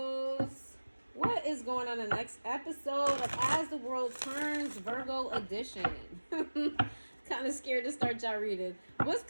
What is going on in the next episode of As the World Turns, Virgo edition? Kind of scared to start y'all reading. What's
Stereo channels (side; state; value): both; inverted; correlation -1.00